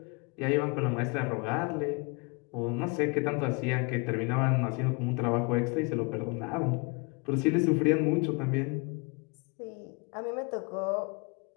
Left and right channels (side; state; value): right; quieter; 29.8 dB